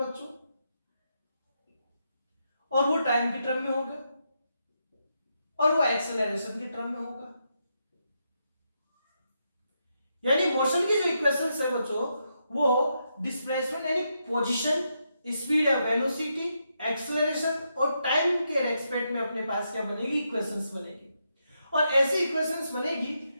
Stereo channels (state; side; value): inverted; both; correlation -0.82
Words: और वो टाइम की टर्म में होगा, और वो एक्सेलरेशन की टर्म में होगा। यानी मोशन की जो इक्वेशंस है बच्चों वो डिस्प्लेसमेंट यानी पोजीशन, स्पीड या वेलोसिटी, एक्सेलरेशन और टाइम के रेस्पेक्ट में अपने पास क्या बनेगी? इक्वेशंस बनेगी। और ऐसी इक्वेशंस बनेगी